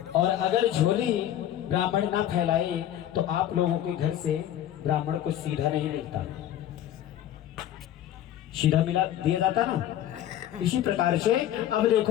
और अगर झोली ब्राह्मण ना फैलाए तो आप लोगों के घर से ब्राह्मण को सीधा नहीं मिलता, सीधा मिला दिया जाता ना। इसी प्रकार से अब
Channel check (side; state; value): right; quieter; 11.8 dB